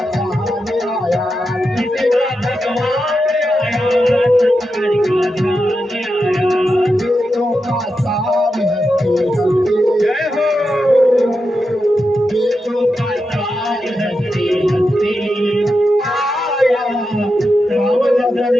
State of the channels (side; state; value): both; normal; correlation 0.88